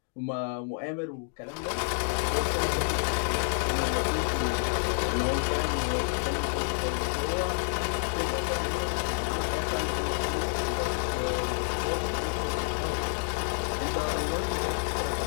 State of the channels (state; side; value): silent; right; 59 dB below the other